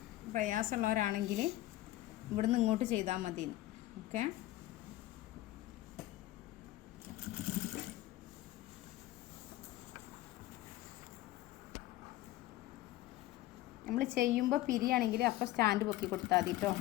പ്രയാസമുള്ളവരാണെങ്കിൽ ഇവിടുന്ന് ഇങ്ങോട്ട് ചെയ്താൽ മതി. ഓക്കെ. നമ്മൾ ചെയ്യുമ്പോൾ പിരിയാണെങ്കിൽ അപ്പോൾ സ്റ്റാൻഡ് പൊക്കി കൊടുത്താൽ മതി കേട്ടോ.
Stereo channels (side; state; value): right; quieter; 15.8 dB